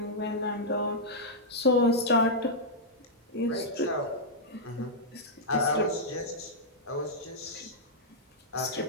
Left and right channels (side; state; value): both; normal; correlation -0.08